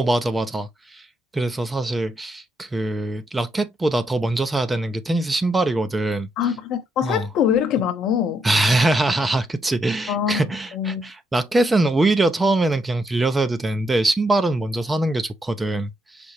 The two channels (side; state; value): both; normal; correlation 0.78